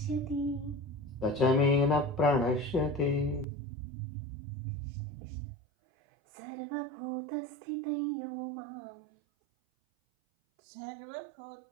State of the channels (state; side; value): drops out; left; at 3.5 s